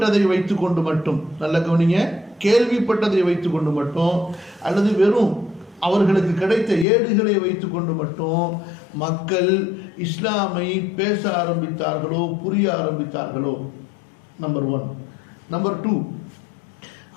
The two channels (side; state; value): right; drops out; at 6.9 s